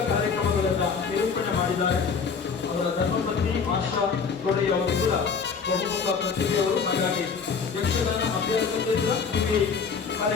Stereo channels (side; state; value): right; quieter; 5.7 dB